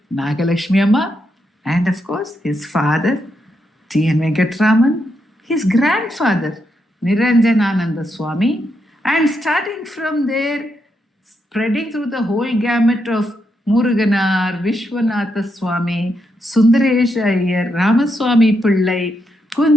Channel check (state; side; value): normal; both; correlation 0.81